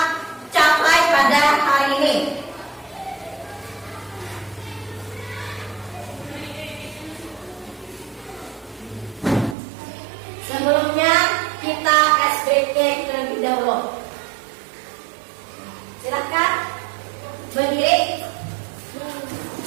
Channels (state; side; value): drops out; left; at 9.6 s